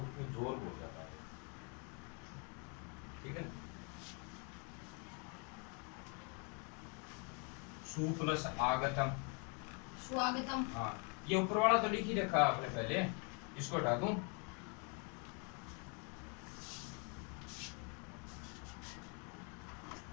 उसमें जोर हो जाता है ठीक है। सु प्लस आगतम स्वागतम। हाँ ये ऊपर वाला तो लिख ही रखा आपने पहले इसको हटा दूं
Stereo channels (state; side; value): quieter; right; 36.1 dB